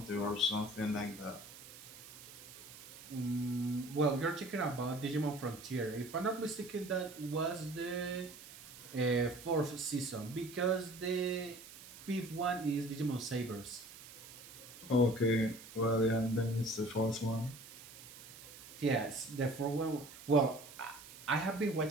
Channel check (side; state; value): right; noise; hiss, 16 dB below the sound